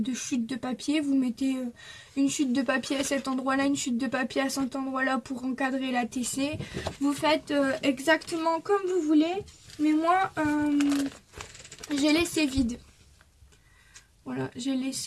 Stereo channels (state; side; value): identical; both; correlation 1.00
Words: chutes de papier. Vous mettez une chute de papier à cet endroit-là, une chute de papier à cet endroit-là pour encadrer la TC. Vous faites exactement comme vous voulez, mais moi j'ai laissé vide. Voilà, j'ai